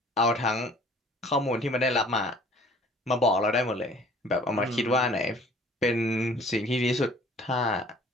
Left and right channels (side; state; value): both; normal; correlation 0.52